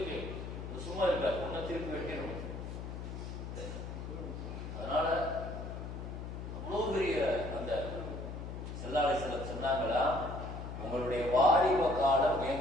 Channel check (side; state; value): left; noise; hum, 7 dB below the sound